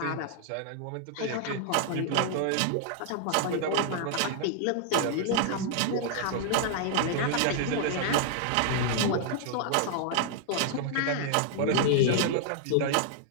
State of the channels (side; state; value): both; different; correlation -0.01